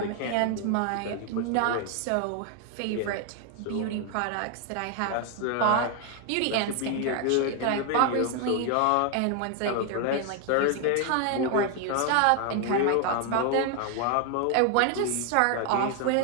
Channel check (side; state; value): both; different; correlation 0.00